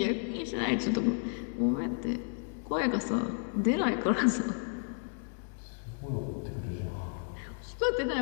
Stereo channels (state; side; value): silent; right; 56 dB below the other